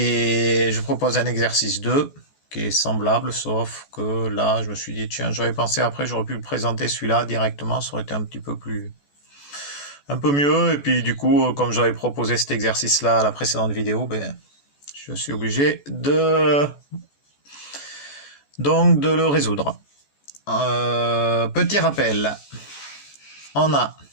je propose un exercice 2 qui est semblable, sauf que là, je me suis dit, tiens, j'aurais pensé après, j'aurais pu le présenter celui-là directement, ça aurait été un petit peu un peu mieux. Et puis du coup, comme j'avais proposé cet exercice-là à la précédente vidéo, je suis obligé de le résoudre. Petit rappel, on a,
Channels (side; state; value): right; late; 14 ms